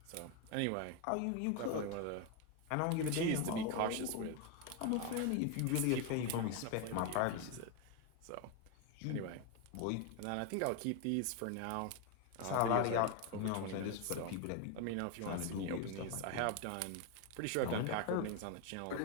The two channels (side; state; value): both; different; correlation 0.01